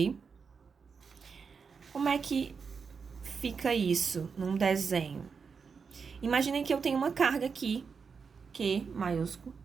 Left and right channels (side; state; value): left; quieter; 5.6 dB